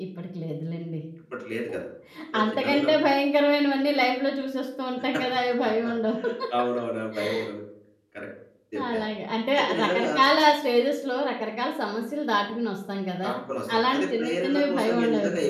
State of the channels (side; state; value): both; identical; correlation 1.00